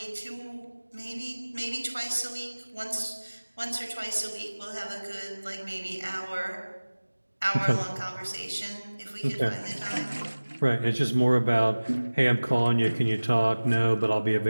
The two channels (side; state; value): both; inverted; correlation -1.00